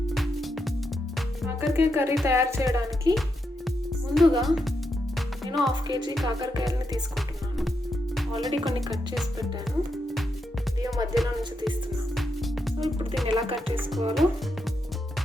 కాకరకాయ curry తయారు చేయడానికి ముందుగా నేను 1/2 kg కాకరకాయలని తీసుకుంటున్నాను. ఆల్రెడీ కొన్ని కట్ చేసి పెట్టాను. దీని మధ్యలో నుంచి తీస్తున్నాను. సో ఇప్పుడు దీన్ని ఎలా కట్ చేసుకోవాలో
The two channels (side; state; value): both; normal; correlation 0.83